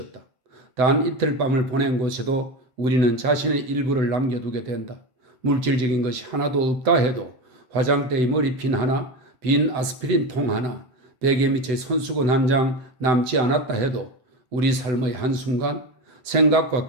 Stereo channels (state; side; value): late; left; 7.9 ms